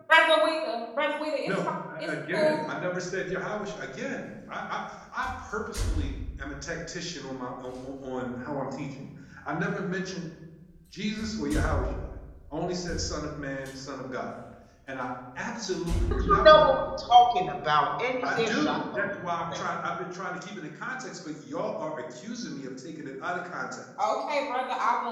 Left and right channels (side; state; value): both; identical; correlation 1.00